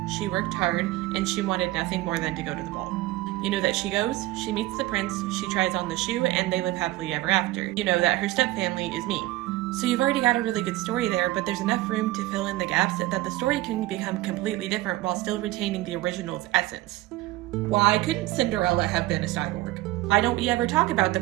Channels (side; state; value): left; quieter; 17.6 dB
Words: she worked hard, and she wanted nothing more than to go to the ball. You know that she goes, she meets the prince, she tries on the shoe, and they live happily ever after. You know that her stepfamily is mean. So you've already got a really good story there, but there's enough room to fill in the gaps that the story can become completely different while still retaining the original's essence. Why couldn't Cinderella have been a cyborg? Why don't we ever talk about the